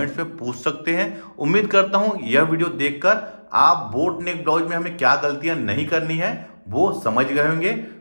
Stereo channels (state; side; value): inverted; both; correlation -1.00